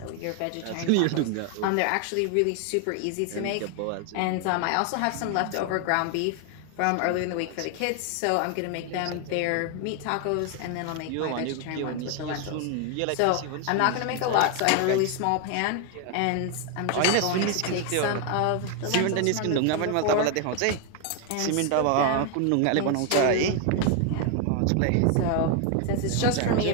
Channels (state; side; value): different; both; correlation 0.01